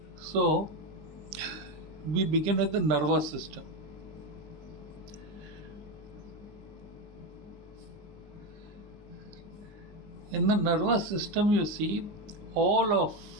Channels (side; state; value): left; late; 20 ms